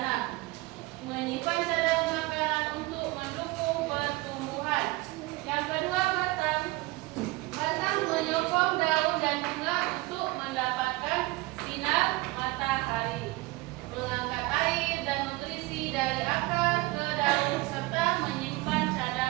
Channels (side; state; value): left; quieter; 21.2 dB